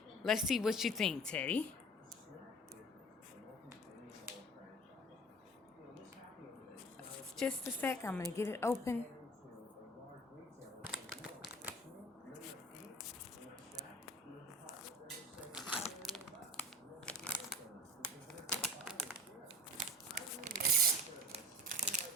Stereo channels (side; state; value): both; normal; correlation 0.39